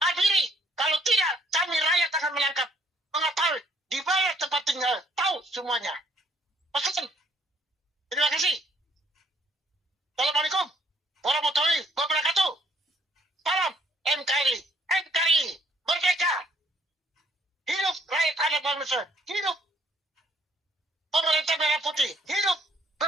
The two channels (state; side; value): normal; both; correlation 0.65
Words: Kalau tidak, kami rakyat akan menangkap. Mengetahui di mana tempat tinggal. Tahu semuanya. Pesan. Terima kasih. Assalamualaikum warahmatullahi wabarakatuh. Salam NKRI. NKRI. Merdeka. Hidup rakyat anak bangsa. Hidup pemerintah merah putih. Hidup